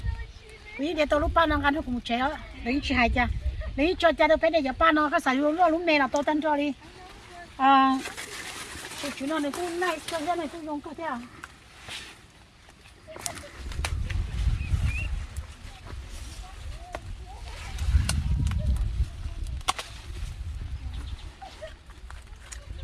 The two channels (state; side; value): identical; both; correlation 1.00